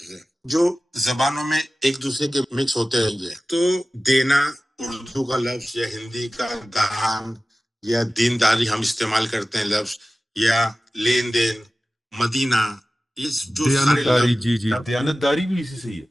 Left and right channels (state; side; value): normal; both; correlation 0.96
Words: ہے جو زبانوں میں ایک دوسرے کے مکس ہوتے ہیں. تو دینا اردو کا لفظ، یا ہندی کا دان، یا دینداری ہم استعمال کرتے ہیں لفظ، یا لین دین، مدینہ، یہ جو سارے دیانتداری، لفظ. جی دیانتداری بھی اسی سے ہی ہے.